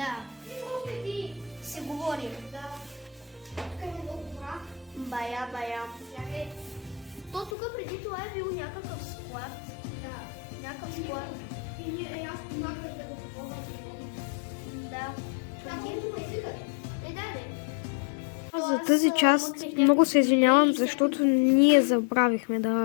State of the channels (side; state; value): right; drops out; at 7.6 s